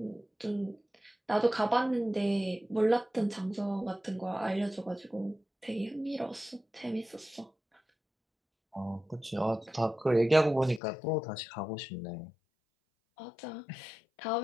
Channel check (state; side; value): drops out; right; at 10.8 s